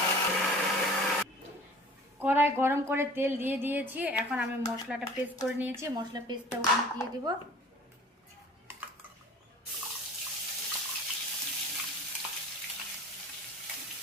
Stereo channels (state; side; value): normal; both; correlation 0.45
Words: কড়াই গরম করে তেল দিয়ে দিয়েছি, এখন আমি মশলাটা পেস্ট করে নিয়েছি, মশলা পেস্টটা ওখানে দিয়ে দিব।